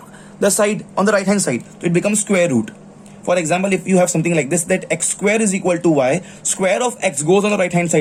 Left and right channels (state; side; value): identical; both; correlation 1.00